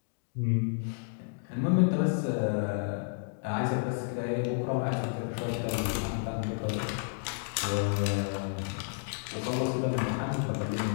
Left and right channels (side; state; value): right; silent; digital silence